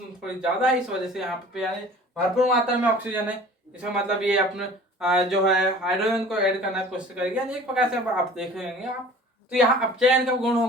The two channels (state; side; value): normal; both; correlation 0.46